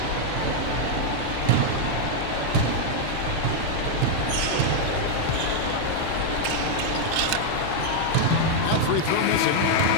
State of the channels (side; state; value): both; different; correlation 0.00